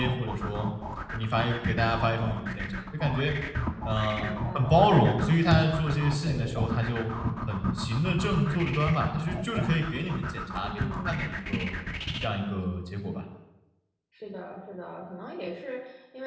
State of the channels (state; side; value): identical; both; correlation 1.00